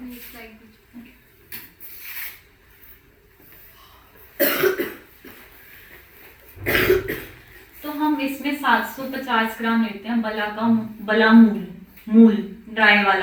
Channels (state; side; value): identical; both; correlation 1.00